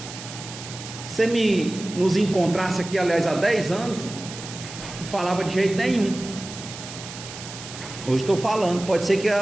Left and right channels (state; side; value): noise; right; hiss, 12 dB below the sound